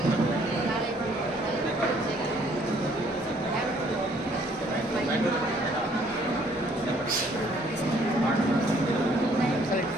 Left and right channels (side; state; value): both; normal; correlation 0.62